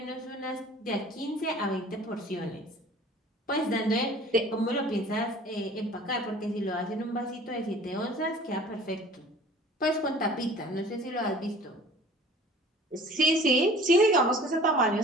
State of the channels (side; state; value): both; normal; correlation 0.47